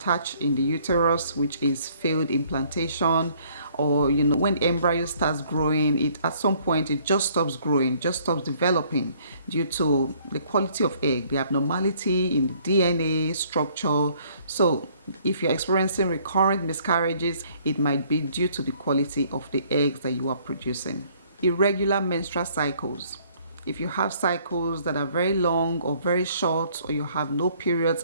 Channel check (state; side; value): inverted; both; correlation -0.61